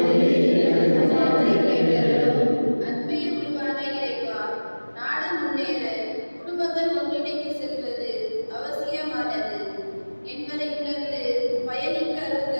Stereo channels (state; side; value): inverted; both; correlation -1.00